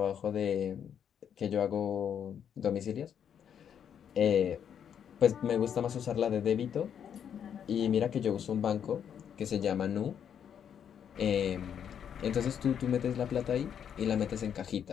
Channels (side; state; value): right; quieter; 8.5 dB